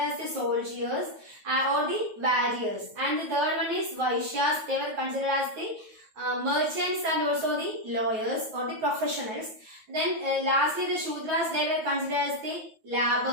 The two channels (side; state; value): left; late; 9.3 ms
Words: the soldiers or the warriors. And the third one is Vaishyas. They were considered as the merchants and also the lawyers or the professionals. Then lastly the Shudras, they were considered as the